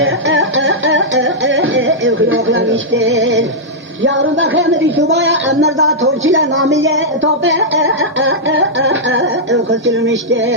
خیوخلا میشتر یارون بخیر مدی صبح امردا تورچیل نامیه توپه خسکل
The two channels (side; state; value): both; normal; correlation -0.08